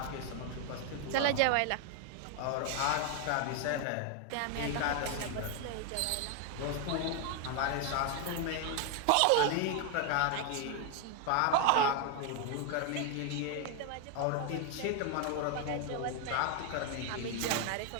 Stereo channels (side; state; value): both; different; correlation 0.01